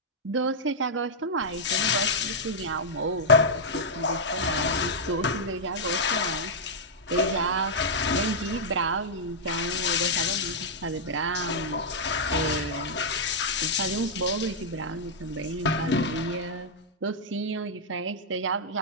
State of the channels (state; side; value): normal; both; correlation -0.06